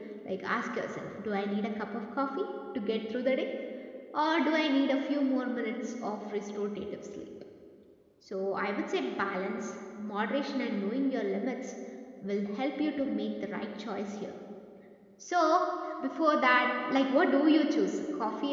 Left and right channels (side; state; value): both; identical; correlation 1.00